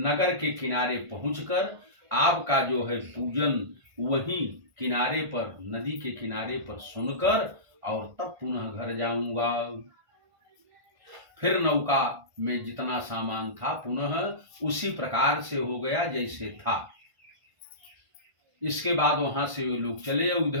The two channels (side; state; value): left; late; 1.5 ms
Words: के किनारे पहुंचकर आपका जो है पूजन वहीं किनारे पर, नदी के किनारे पर सुनकर और तब पुनः घर जाऊंगा। फिर नौका में जितना सामान था पुनः उसी प्रकार से हो गया जैसे था। इसके बाद वहां से वे लोग चले।